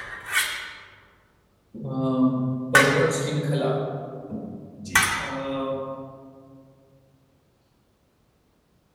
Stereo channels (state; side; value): identical; both; correlation 1.00